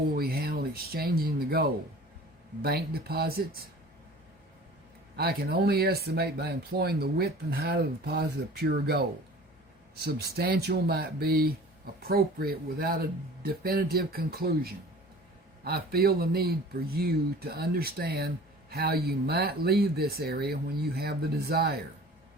we handle exchanging the gold? Bank deposits? I can only estimate by employing the width and height of the deposit of pure gold. Substantial might be appropriate without a definitive conclusion. I feel the need for you to understand how you might leave this area when you have the desire.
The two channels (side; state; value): both; normal; correlation 0.44